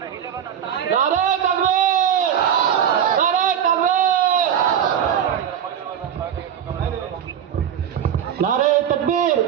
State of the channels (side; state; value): left; quieter; 9.0 dB